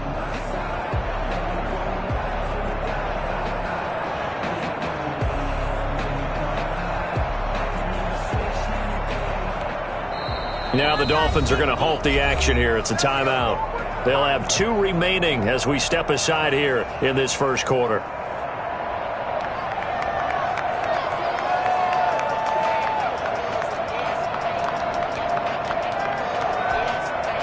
Now the Dolphins are going to halt the action here. It's a timeout. They'll have 2 remaining as we step aside here in this first quarter.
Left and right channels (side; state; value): both; identical; correlation 1.00